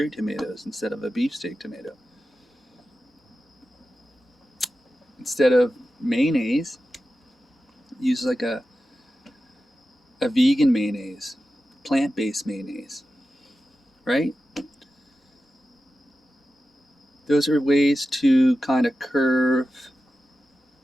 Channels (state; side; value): normal; both; correlation 0.92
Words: tomatoes instead of a beefsteak tomato. Instead of mayonnaise, use like a vegan mayonnaise, plant-based mayonnaise, right? Those are ways to kind of curve